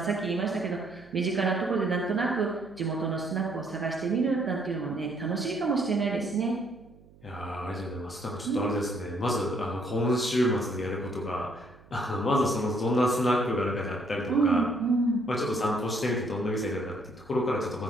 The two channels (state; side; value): noise; right; hum, 26 dB below the sound